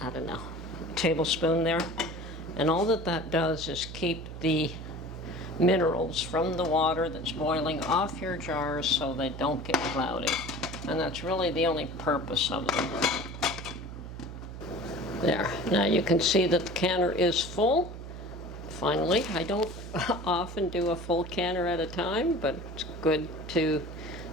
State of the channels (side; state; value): right; noise; hum, 10 dB below the sound